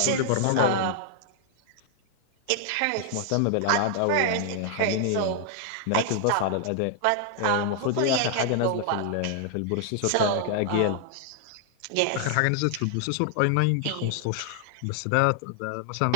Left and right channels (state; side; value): different; both; correlation 0.00